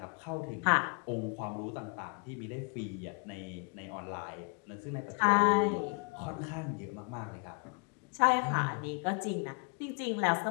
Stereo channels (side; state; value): right; quieter; 37.0 dB